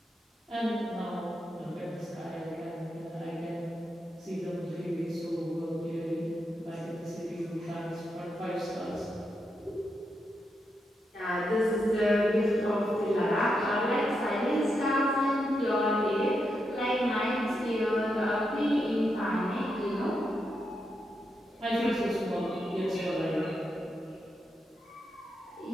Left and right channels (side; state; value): both; normal; correlation 0.84